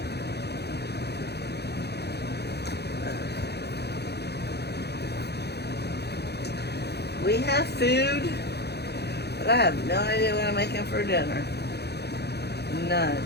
We have food, but I have no idea what I'm making for dinner. None.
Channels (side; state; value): right; late; 0.48 ms